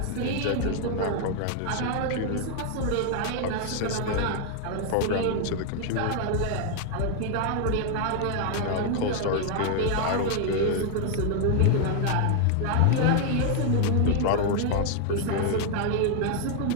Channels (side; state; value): both; different; correlation 0.00